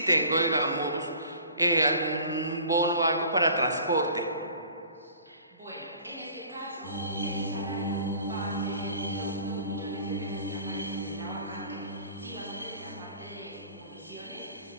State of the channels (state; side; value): inverted; both; correlation -0.47